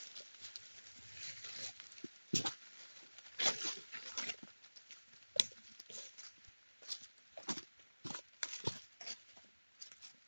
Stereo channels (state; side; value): inverted; both; correlation -1.00